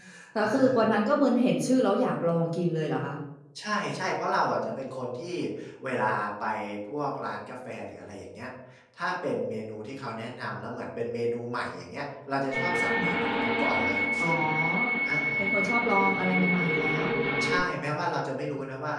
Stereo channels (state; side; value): identical; both; correlation 1.00